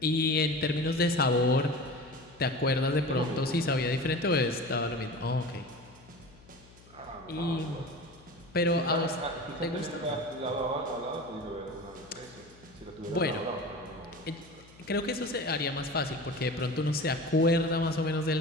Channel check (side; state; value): left; noise; hum, 24 dB below the sound